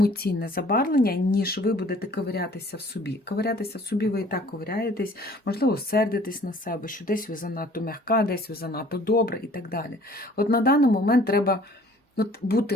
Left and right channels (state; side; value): normal; both; correlation 0.54